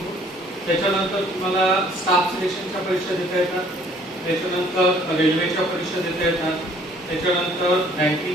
त्याच्यानंतर तुम्हाला स्टाफ सिलेक्शनच्या परीक्षा देता येतात, त्याच्यानंतर रेल्वेच्या परीक्षा देता येतात, त्याच्यानंतर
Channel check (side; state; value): both; normal; correlation 0.58